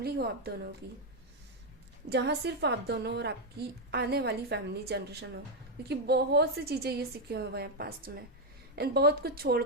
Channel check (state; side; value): normal; both; correlation 0.01